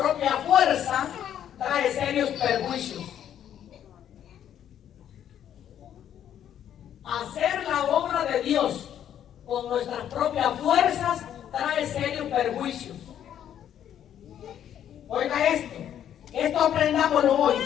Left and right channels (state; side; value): quieter; right; 10.1 dB